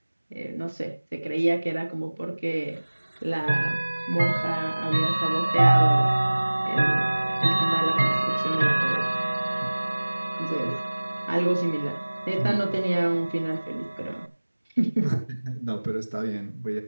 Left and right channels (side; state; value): both; inverted; correlation -1.00